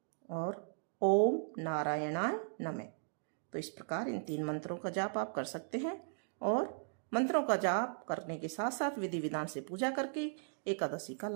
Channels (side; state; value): left; silent; digital silence